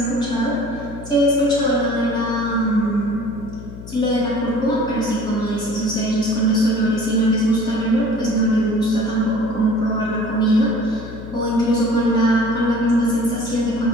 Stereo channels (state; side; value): noise; left; hum, 13 dB below the sound